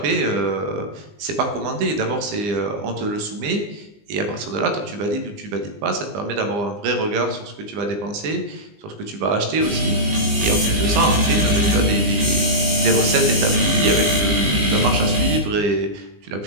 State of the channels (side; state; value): left; late; 20 ms